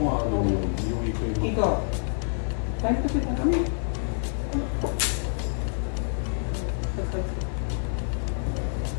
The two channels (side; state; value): right; silent; digital silence